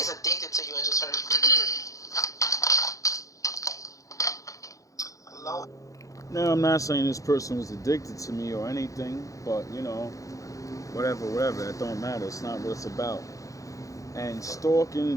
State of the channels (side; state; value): right; late; 0.16 ms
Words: addicted to you, I just heard. Hello? Now, I'm not saying this person was addicted to me or anything, but, you know, whatever, that don't matter. It's not what it's about. And